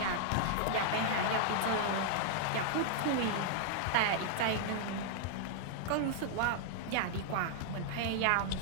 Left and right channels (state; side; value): different; both; correlation -0.01